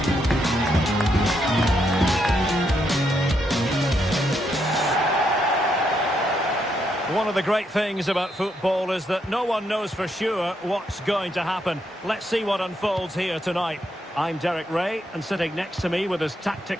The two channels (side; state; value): both; normal; correlation 0.78